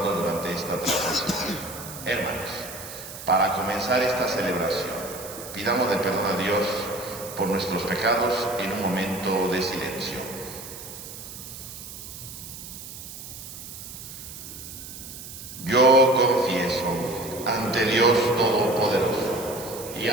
durante esta transmisión. Hermanos, para comenzar esta celebración, pidamos de perdón a Dios por nuestros pecados en un momento de silencio. Yo confieso ante Dios Todopoderoso y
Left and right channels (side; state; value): right; noise; hiss, 12 dB below the sound